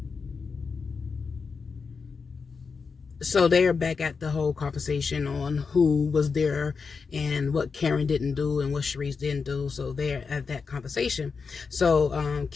So they're back at the whole conversation on who was there and what Karen didn't do and what Charisse didn't do. So they're at that conversation. So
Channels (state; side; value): quieter; right; 5.1 dB